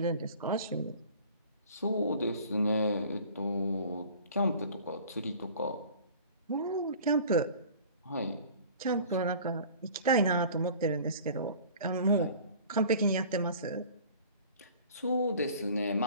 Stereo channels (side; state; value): both; inverted; correlation -0.46